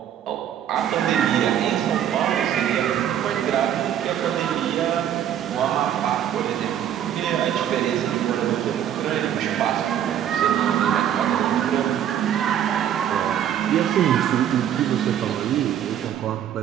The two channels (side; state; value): left; quieter; 10.1 dB